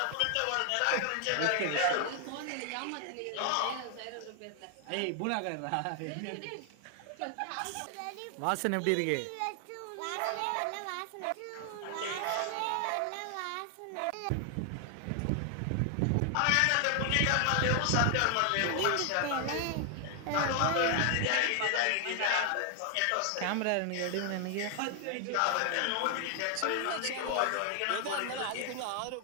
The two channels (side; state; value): both; different; correlation 0.00